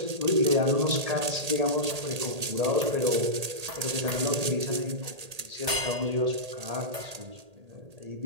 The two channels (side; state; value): left; late; 1.8 ms